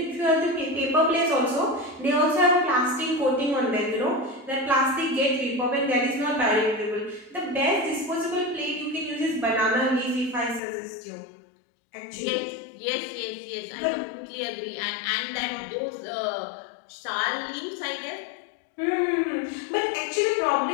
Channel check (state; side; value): drops out; right; at 10.6 s